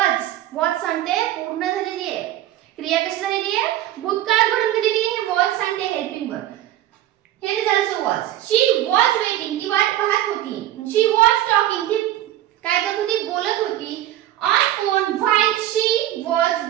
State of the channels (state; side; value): quieter; left; 13.3 dB